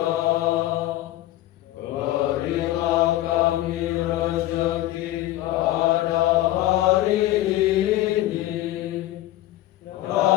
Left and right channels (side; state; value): right; quieter; 15.3 dB